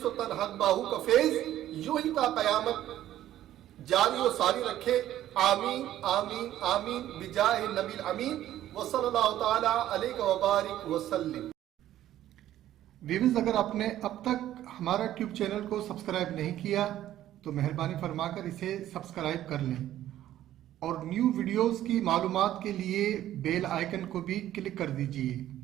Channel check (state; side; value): quieter; left; 12.8 dB